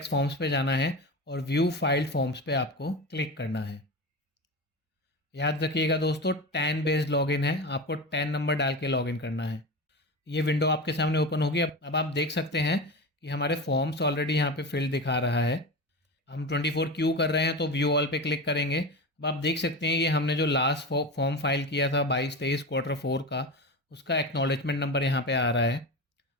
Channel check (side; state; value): both; normal; correlation 0.24